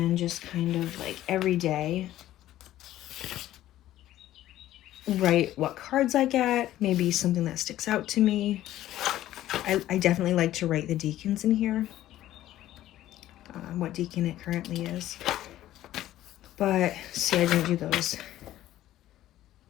just kind of like every day write what cards I get, maybe something that sticks out to me. I definitely like to write the decans in here, what decan it currently is. But see, I didn't do those.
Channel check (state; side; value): quieter; right; 13.8 dB